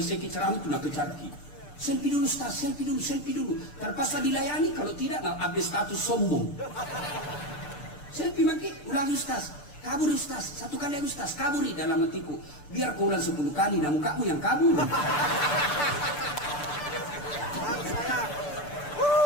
ceramah itu nak kecarki. Selfie dulu, Ustaz, selfie dulu. Terpaksa dilayani, kalau tidak, nak update status sombong. Selfie maki, ulangi Ustaz. Kabur Ustaz, satu kali Ustaz, kaburi dalam hatiku. Biar kau ulang 10 kali, namun kamu yang kabur.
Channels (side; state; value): right; late; 6.8 ms